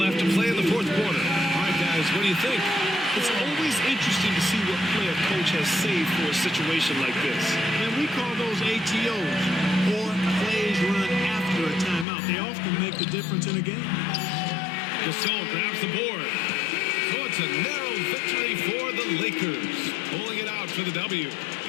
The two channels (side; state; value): right; drops out; at 12.1 s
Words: to play in the fourth quarter. All right, guys, what do you think? It's always interesting to see what play a coach has saved for a situation like this. And we call those ATOs, or plays run after a timeout. They often make the difference in a game. Gasol grabs the board. So it's a narrow victory for the Lakers, pulling it out for the W.